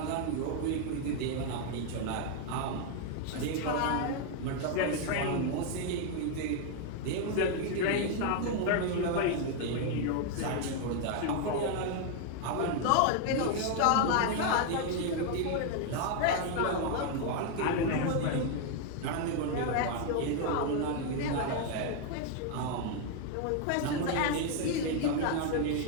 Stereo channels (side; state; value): both; different; correlation 0.00